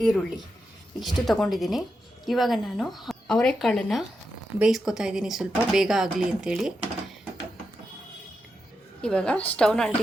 ಈರುಳ್ಳಿ ಇಷ್ಟು ತಗೊಂಡಿದ್ದೀನಿ. ಇವಾಗ ನಾನು ಅವರೆಕಾಳನ್ನು ಬೇಯಿಸ್ಕೊತಾ ಇದ್ದೀನಿ, ಸ್ವಲ್ಪ ಬೇಗ ಆಗಲಿ ಅಂಥೇಳಿ. ಇವಾಗ ಸ್ಟವ್ನ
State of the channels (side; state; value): both; normal; correlation 0.87